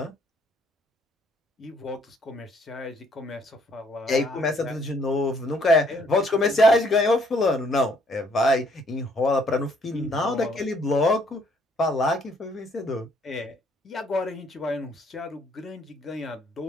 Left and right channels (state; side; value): normal; both; correlation 0.65